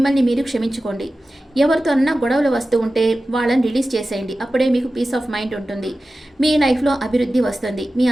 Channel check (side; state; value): both; normal; correlation 0.95